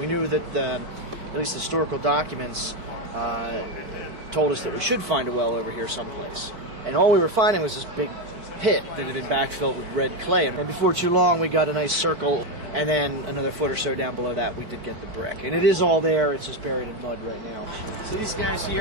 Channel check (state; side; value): late; left; 4.5 ms